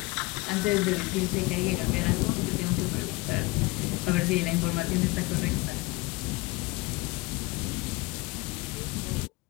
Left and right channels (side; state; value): right; quieter; 23.0 dB